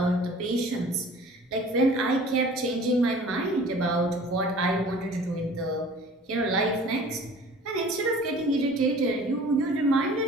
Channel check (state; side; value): normal; both; correlation 0.47